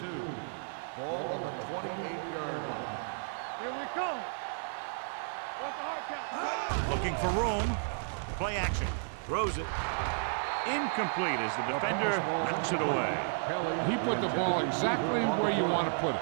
Ball on the 28-yard line. Here we come. What's the hard count? Looking for room. Play action. Throws it. Incomplete as the defender knocks it away. He put the ball exactly where you want to put it.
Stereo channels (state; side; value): silent; left; digital silence